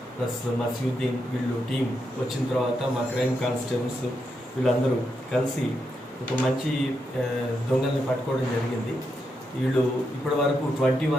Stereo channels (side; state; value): both; normal; correlation 0.83